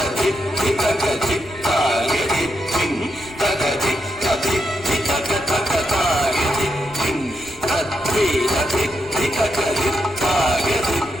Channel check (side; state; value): left; noise; rumble, 20 dB below the sound